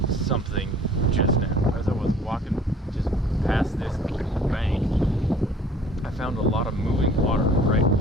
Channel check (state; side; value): normal; both; correlation 0.52